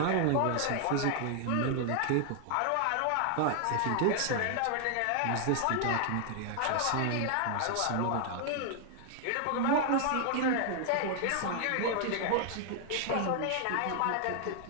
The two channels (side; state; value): both; different; correlation 0.00